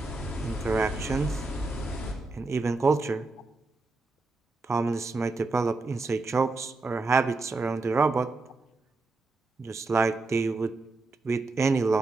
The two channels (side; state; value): left; quieter; 3.5 dB